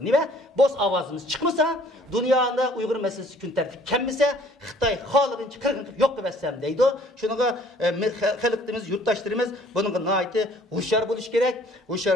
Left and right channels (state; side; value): normal; both; correlation 0.57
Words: Niye? Boz avazımız çıkmasa, dünyada Uygur meselesi gün tertip kemmese, Xitay halığınca kırgınlık yok demezsem deydi. Şununla halkımız, yurttaşlarımız bunun naiti hoşyar